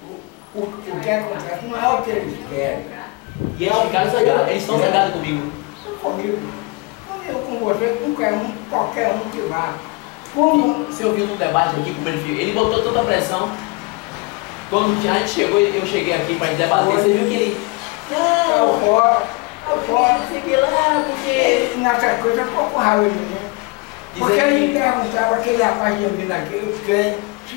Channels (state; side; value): quieter; right; 26.3 dB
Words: O que acontece não é o que eles querem. E eles ficaram zangados, eles estão zangados comigo. Comigo, com você, com qualquer um que vá. Você ouviu no debate aqui como ele fez? Ele botou toda a pressão. Quando a gente chegou, eu cheguei aqui para debater, você viu que ele... Não, fora, não sei o que lá, porque... Nessa coisa ficou com raiva de mim. Porque ele me perguntava, aquele rapaz de mim aqui, eu quero,